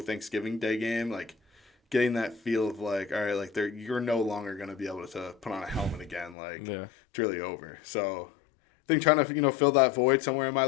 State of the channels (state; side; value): drops out; right; at 6.4 s